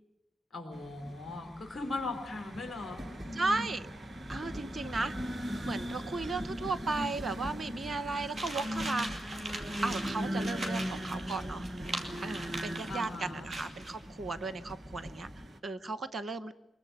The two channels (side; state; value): both; normal; correlation 0.85